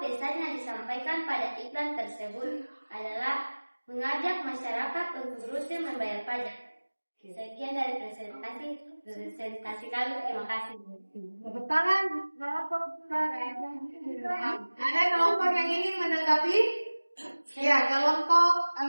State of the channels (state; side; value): inverted; both; correlation -1.00